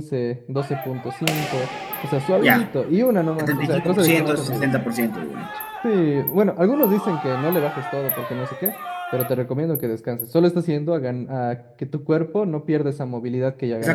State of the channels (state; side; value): identical; both; correlation 1.00